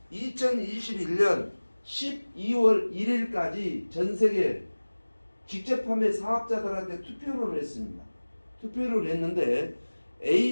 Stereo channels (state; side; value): inverted; both; correlation -1.00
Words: 2021년 12월 1일까지 전 세계 직접 판매 사업자들한테 투표를 했습니다. 투표를 했는데